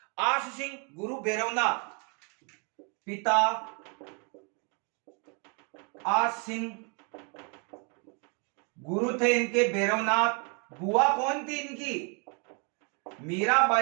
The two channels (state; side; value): quieter; left; 35.7 dB